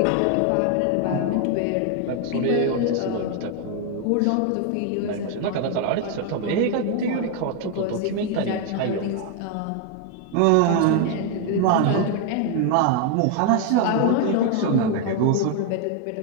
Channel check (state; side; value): different; both; correlation 0.01